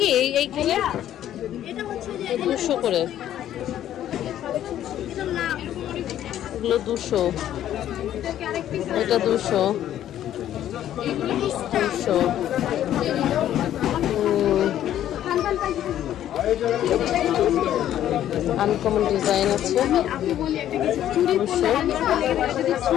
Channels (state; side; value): quieter; right; 11.6 dB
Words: এইখানে 200 করে। এগুলো 200, এটা 200, 200। আনকমন ডিজাইন আছে, 200।